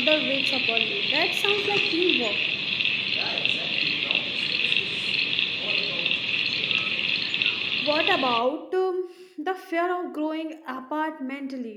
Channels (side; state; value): both; identical; correlation 1.00